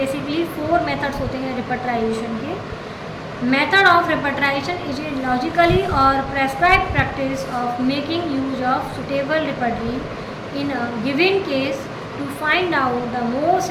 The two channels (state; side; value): identical; both; correlation 1.00